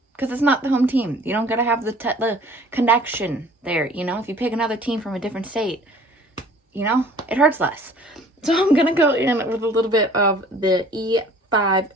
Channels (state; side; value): normal; both; correlation 0.51